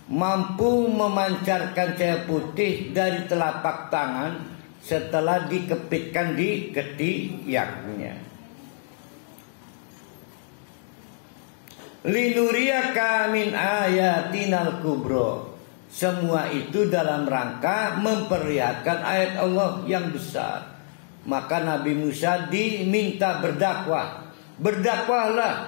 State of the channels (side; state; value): right; silent; digital silence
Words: mampu memancarkan cahaya putih dari telapak tangan setelah dikepitkan di ketiaknya. Linuriyaka min ayatinal kubro. Semua itu dalam rangka memperlihatkan ayat Allah yang besar. Maka Nabi Musa diminta berdakwah.